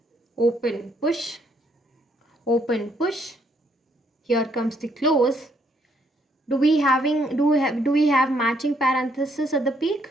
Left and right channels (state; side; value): normal; both; correlation 0.70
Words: open push, open push. Here comes the close. Do we have matching parenthesis at the peak?